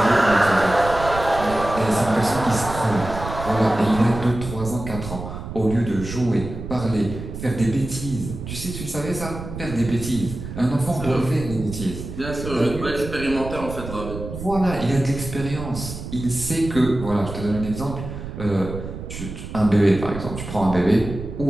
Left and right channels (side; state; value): right; noise; rumble, 9 dB below the sound